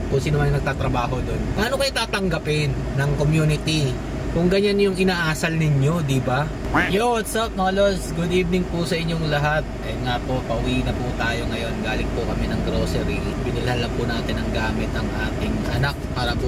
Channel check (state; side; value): identical; both; correlation 1.00